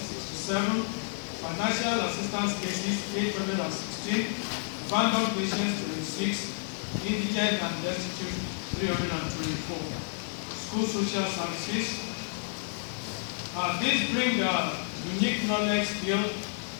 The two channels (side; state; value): right; silent; digital silence